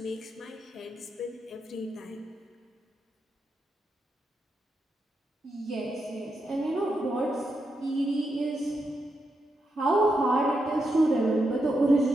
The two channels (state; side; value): normal; both; correlation 0.84